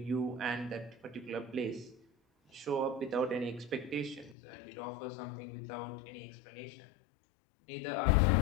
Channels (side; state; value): right; drops out; at 4.4 s